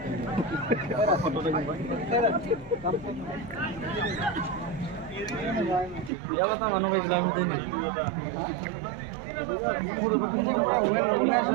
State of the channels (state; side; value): drops out; left; at 6.1 s